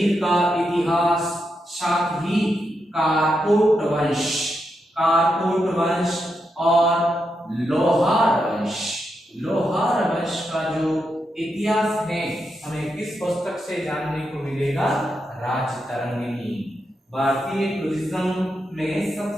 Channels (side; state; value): both; normal; correlation 0.84